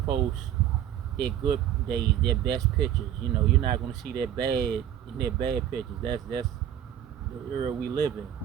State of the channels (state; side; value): quieter; left; 10.7 dB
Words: their good days, their best pictures. You're not gonna see their bad pictures. That's the era we live in.